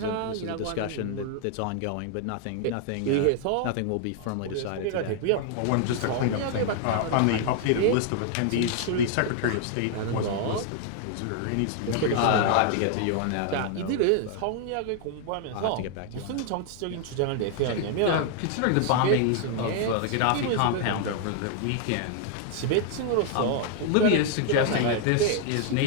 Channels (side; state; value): both; different; correlation 0.00